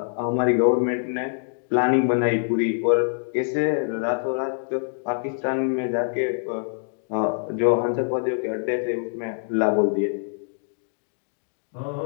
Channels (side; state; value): right; silent; digital silence